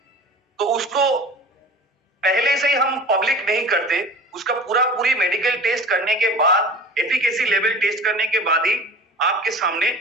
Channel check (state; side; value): normal; both; correlation 0.39